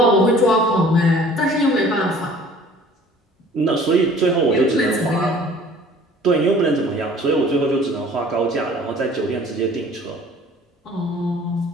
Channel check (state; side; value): normal; both; correlation 0.50